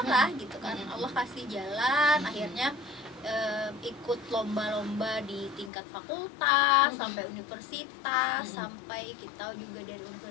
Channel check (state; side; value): drops out; right; at 5.7 s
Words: lah gitu kan. Allah kasih jalan, akhirnya ikut lomba-lomba di tingkat fakultas sampai universitas, sampai kita juga dari